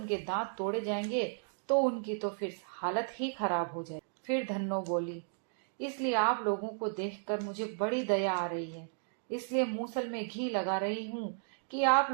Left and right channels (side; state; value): left; silent; digital silence